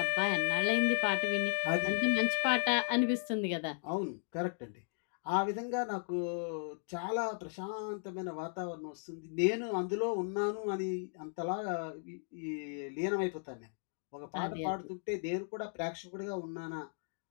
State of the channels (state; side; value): silent; right; digital silence